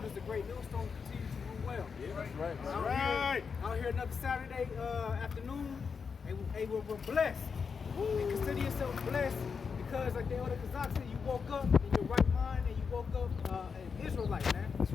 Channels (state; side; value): quieter; right; 5.8 dB